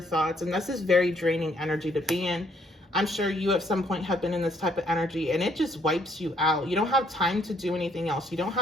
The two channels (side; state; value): both; normal; correlation 0.68